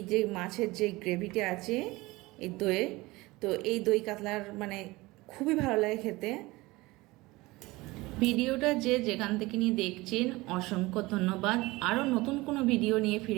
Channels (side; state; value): left; quieter; 21.1 dB